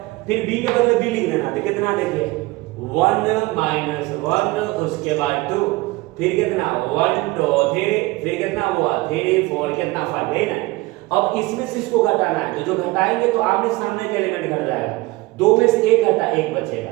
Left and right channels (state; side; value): quieter; left; 21.5 dB